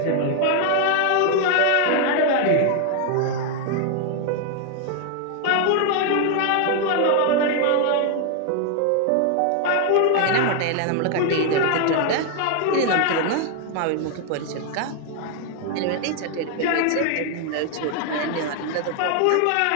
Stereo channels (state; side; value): different; both; correlation 0.00